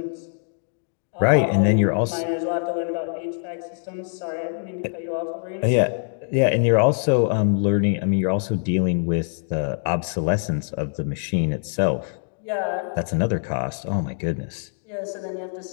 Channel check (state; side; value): silent; right; 62 dB below the other